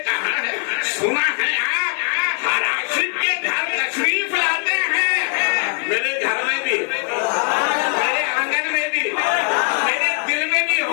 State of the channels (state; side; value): quieter; right; 39.7 dB